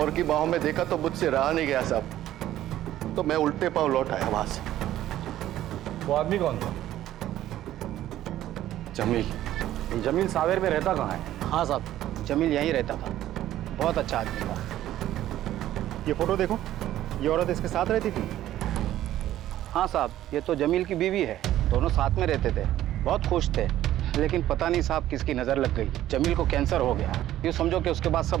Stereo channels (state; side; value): quieter; left; 13.2 dB